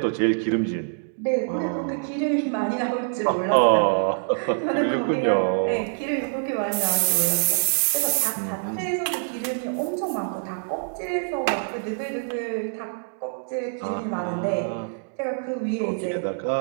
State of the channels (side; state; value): left; silent; digital silence